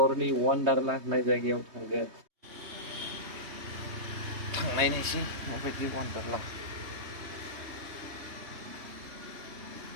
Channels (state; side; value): late; left; 3.2 ms